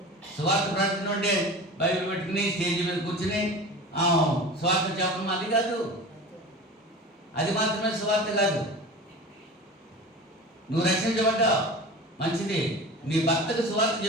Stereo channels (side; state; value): both; normal; correlation 0.34